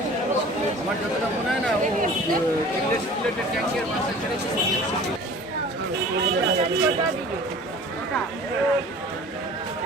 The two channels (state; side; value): normal; both; correlation 0.44